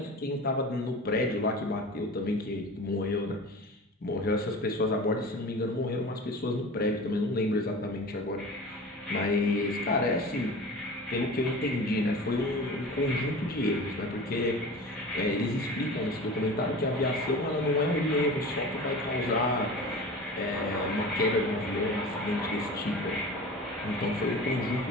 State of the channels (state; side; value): normal; both; correlation 0.36